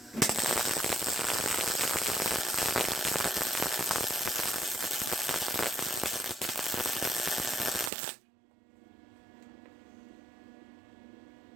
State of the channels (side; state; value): left; drops out; at 7.9 s